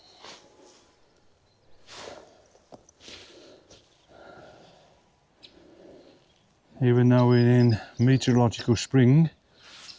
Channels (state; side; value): identical; both; correlation 1.00